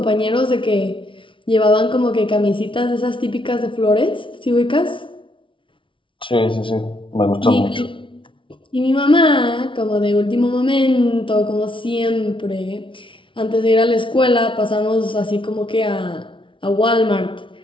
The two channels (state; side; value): late; right; 0.25 ms